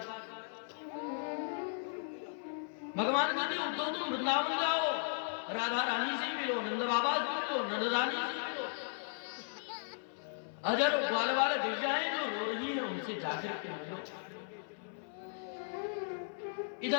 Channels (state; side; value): silent; right; 54 dB below the other